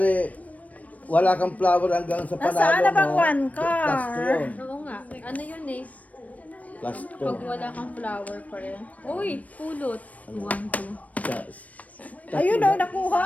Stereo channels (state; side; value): late; right; 0.070 ms